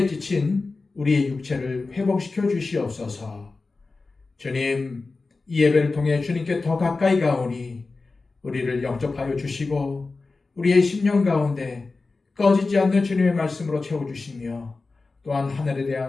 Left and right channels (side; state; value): right; quieter; 3.8 dB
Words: 지친 우리의 육체를 회복시켜 주시옵소서. 주님, 이 예배를 통해 주님께 더 가까이 가오니 우리를 영접하여 주시고 우리의 심령 가운데 꺼지지 않는 주님의 말씀으로 채워주시며 또한 하늘에